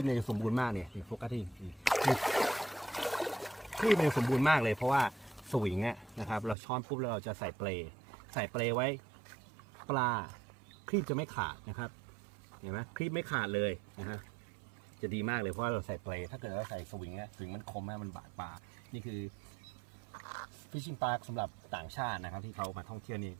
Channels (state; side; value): drops out; left; at 6.6 s